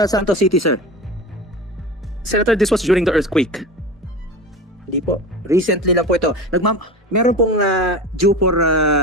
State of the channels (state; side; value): normal; both; correlation 0.30